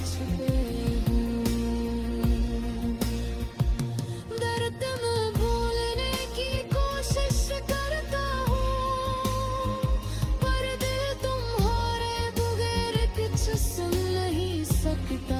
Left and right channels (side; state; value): both; identical; correlation 1.00